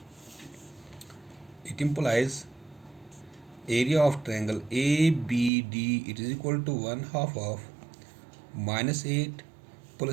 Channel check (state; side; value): drops out; left; at 5.5 s